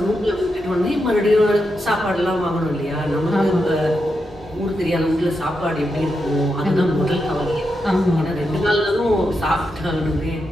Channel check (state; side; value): normal; both; correlation 0.85